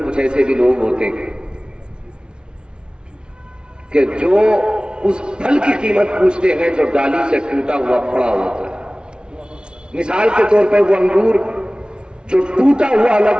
کچھ ایسے بھی لوگ ہوتے ہیں کہ جو اس پھل کی قیمت پوچھتے ہیں جو ڈالی سے ٹوٹا ہوا پڑا ہوتا ہے. مثال کے طور پہ وہ انگور جو ٹوٹا ہوا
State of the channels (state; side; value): late; left; 0.055 ms